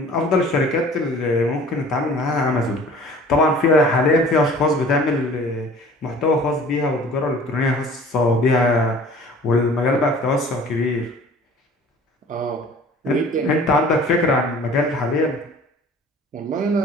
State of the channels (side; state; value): both; normal; correlation 0.48